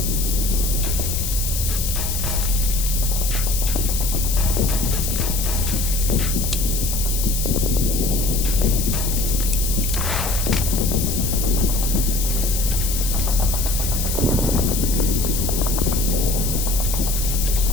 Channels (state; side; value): noise; left; hiss, 3 dB below the sound